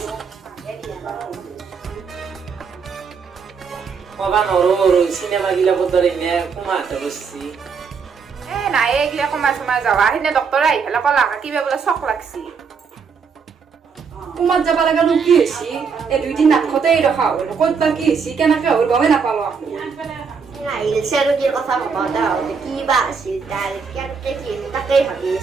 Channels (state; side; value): quieter; left; 5.8 dB